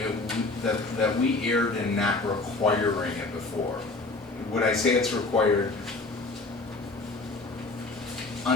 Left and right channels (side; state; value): right; quieter; 3.4 dB